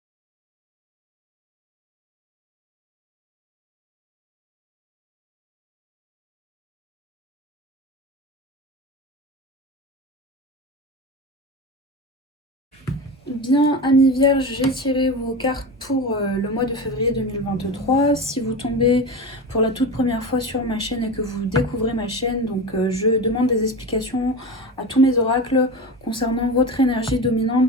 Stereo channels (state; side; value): normal; both; correlation 0.26